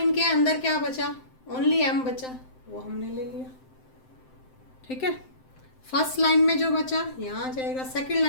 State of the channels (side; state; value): right; late; 7.7 ms